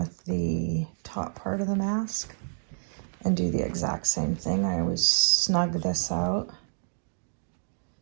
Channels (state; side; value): silent; left; digital silence